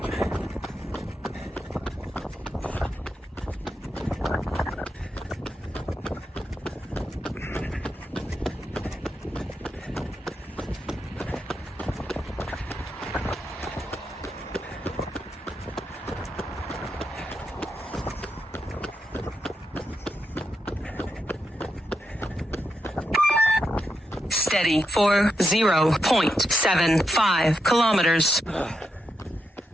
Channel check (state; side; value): normal; both; correlation 0.84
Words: Steady for 0.75 kilometers.